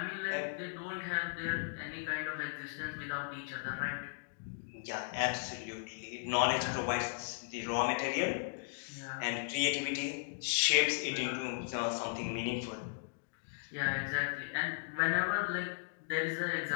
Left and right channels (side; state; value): right; silent; digital silence